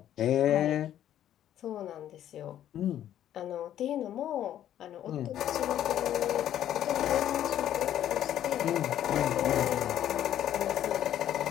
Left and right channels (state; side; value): quieter; right; 11.3 dB